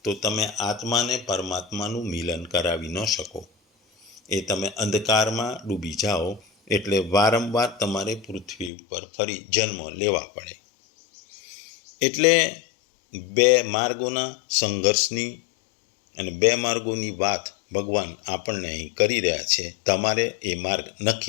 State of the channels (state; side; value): drops out; right; at 8.7 s